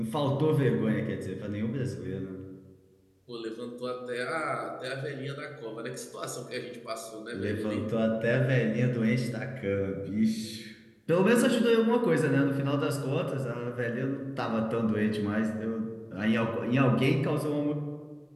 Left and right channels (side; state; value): both; identical; correlation 1.00